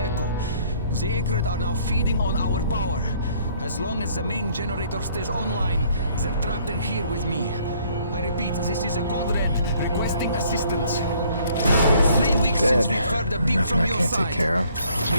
The Acrid are now feeding on our power. As long as the main generator stays online, they're trapped in here with me. I repeat, this is a Code Red requesting assistance. It's 3 weeks since we've heard a beep from your side.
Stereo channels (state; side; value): inverted; both; correlation -0.62